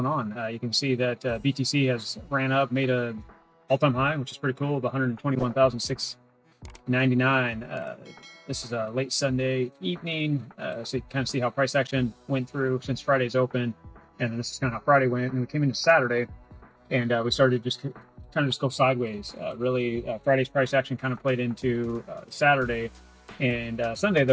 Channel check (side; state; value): both; identical; correlation 1.00